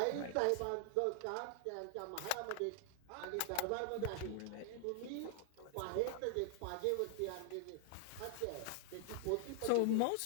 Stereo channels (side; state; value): both; different; correlation 0.00